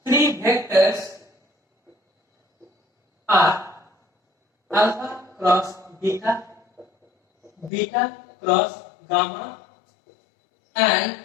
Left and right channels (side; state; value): right; drops out; at 7.7 s